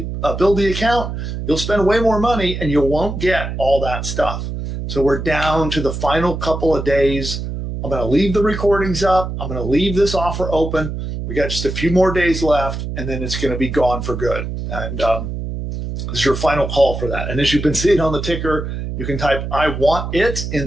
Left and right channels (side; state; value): right; noise; hum, 5 dB below the sound